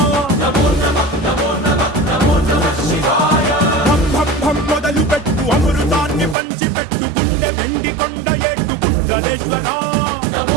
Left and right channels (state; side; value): drops out; left; at 6.4 s